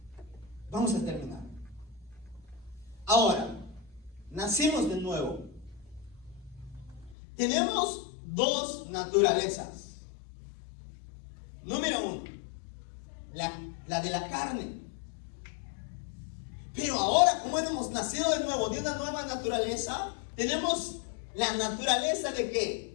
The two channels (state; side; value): drops out; right; at 7.2 s